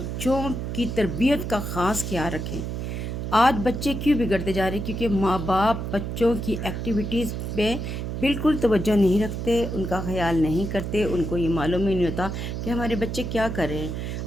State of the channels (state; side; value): noise; right; hum, 4 dB below the sound